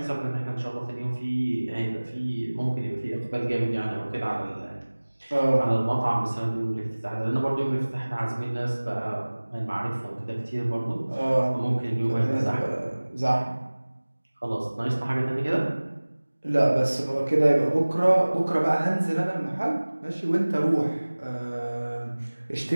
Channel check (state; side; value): inverted; both; correlation -1.00